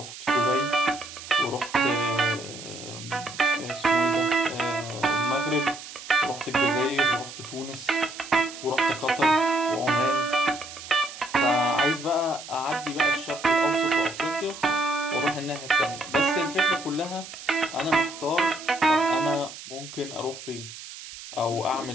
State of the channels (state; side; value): noise; right; hiss, 13 dB below the sound